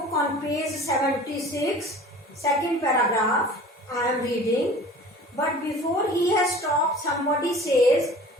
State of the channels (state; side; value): normal; both; correlation 0.43